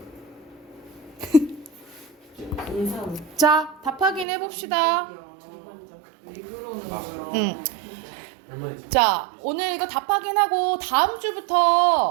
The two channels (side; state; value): left; drops out; at 4.2 s